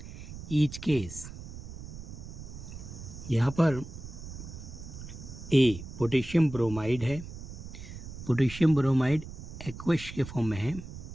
each case. यहाँ पर A potassium bromide है. Potassium bromide aqueous के form में है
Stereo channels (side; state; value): right; noise; rumble, 11 dB below the sound